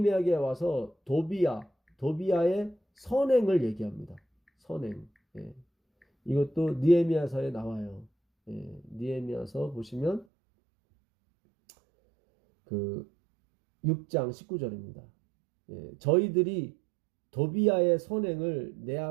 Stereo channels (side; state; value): left; drops out; at 10.2 s